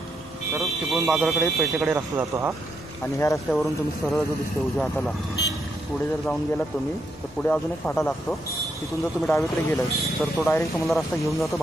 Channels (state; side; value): normal; both; correlation 0.79